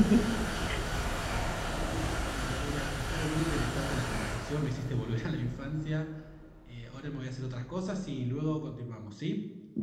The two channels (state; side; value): identical; both; correlation 1.00